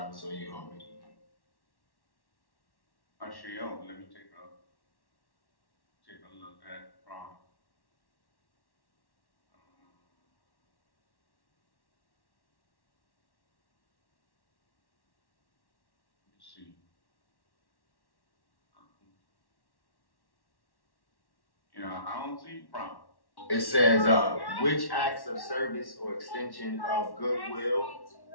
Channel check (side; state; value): right; late; 1.1 ms